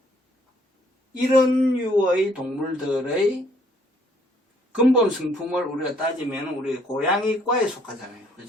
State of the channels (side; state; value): both; normal; correlation 0.64